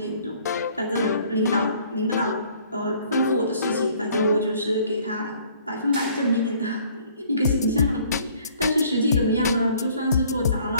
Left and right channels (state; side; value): inverted; both; correlation -0.58